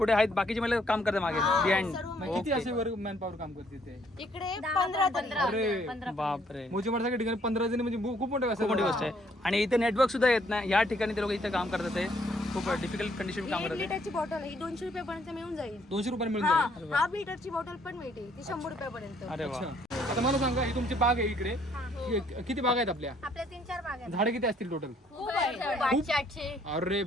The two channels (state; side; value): normal; both; correlation 0.66